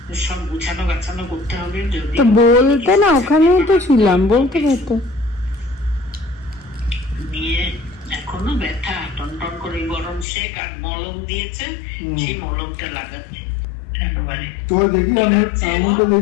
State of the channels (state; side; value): drops out; right; at 10.2 s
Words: সব গুছানো গাছানো করতে হবে। যদি বলতে না, ওখানেই তো ছিলাম, বলতে পারতো। নিয়ে এখনো ব্যথা, টনটন করে গরম শেক আর মলম দিয়েছে, সেই মলমটা লাগাচ্ছে একেবারে। দেখি